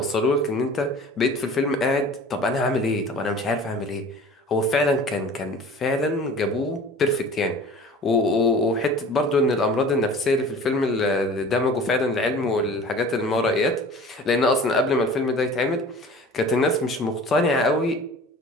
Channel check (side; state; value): both; normal; correlation 0.43